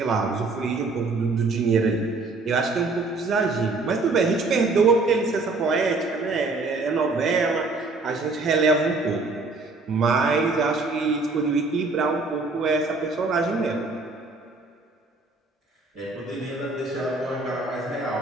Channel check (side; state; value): left; quieter; 3.6 dB